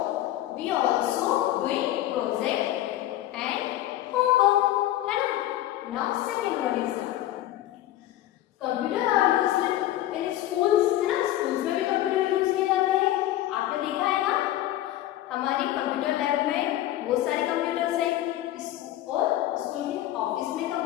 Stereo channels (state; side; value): quieter; right; 14.1 dB